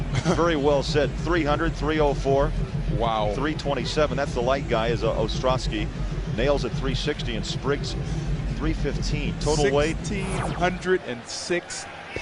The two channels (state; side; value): identical; both; correlation 1.00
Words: very well said. 300, 304. Wow. 327. That's the light guy, is Ostrowski. Nails at 360 and Spriggs 315. Total weight 1,606